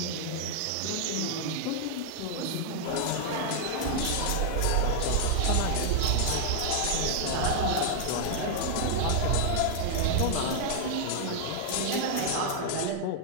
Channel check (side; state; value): both; different; correlation -0.01